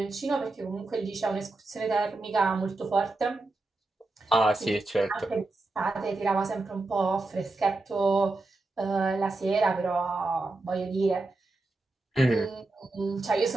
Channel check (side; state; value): left; quieter; 3.1 dB